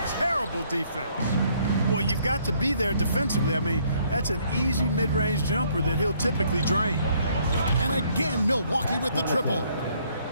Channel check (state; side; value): inverted; both; correlation -0.66